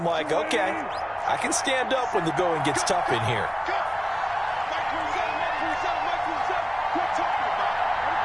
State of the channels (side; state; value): both; identical; correlation 1.00